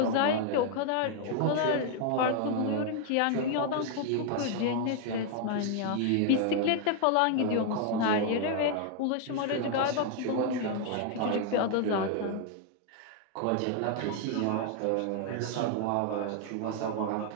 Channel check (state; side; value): different; both; correlation 0.00